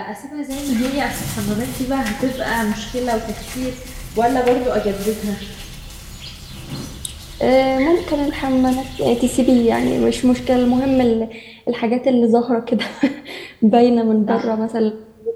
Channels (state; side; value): identical; both; correlation 1.00